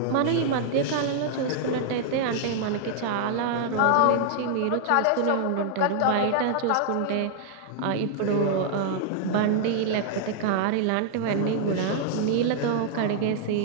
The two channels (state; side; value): different; both; correlation -0.01